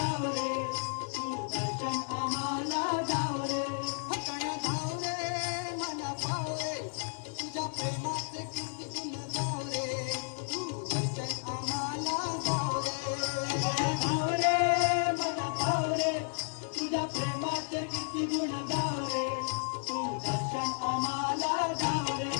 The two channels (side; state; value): right; silent; 56 dB below the other